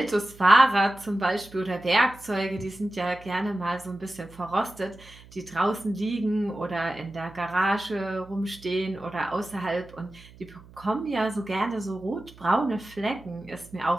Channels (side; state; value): right; noise; hum, 22 dB below the sound